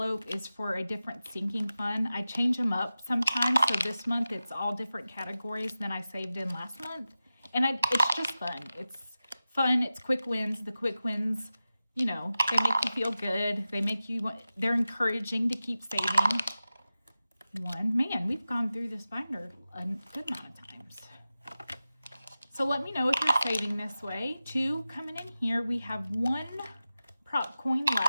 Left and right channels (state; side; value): inverted; both; correlation -0.94